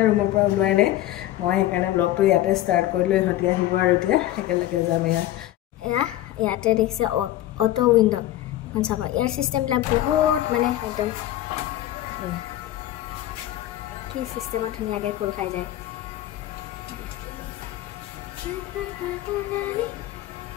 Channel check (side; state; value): right; quieter; 14.3 dB